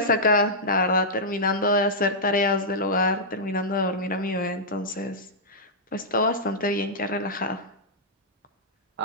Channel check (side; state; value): both; normal; correlation -0.10